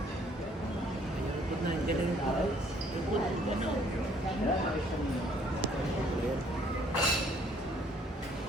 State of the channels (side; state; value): both; normal; correlation 0.62